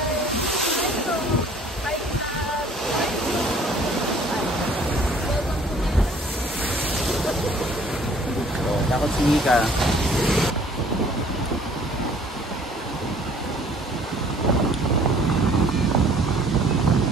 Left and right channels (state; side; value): normal; both; correlation 0.55